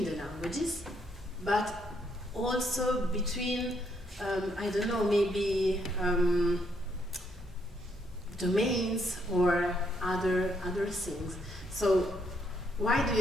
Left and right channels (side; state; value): both; normal; correlation 0.73